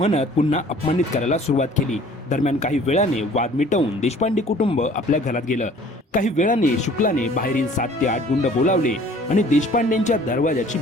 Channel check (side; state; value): both; normal; correlation 0.52